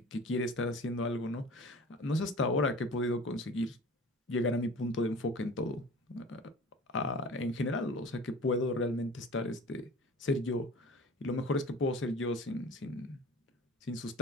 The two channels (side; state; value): both; normal; correlation 0.41